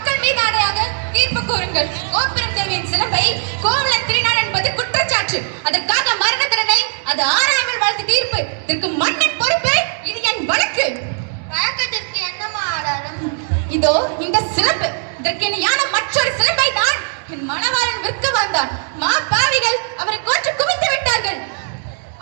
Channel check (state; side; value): silent; left; 57 dB below the other